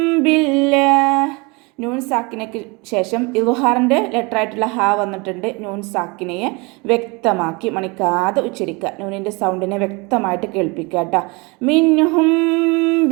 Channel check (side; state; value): left; quieter; 27.6 dB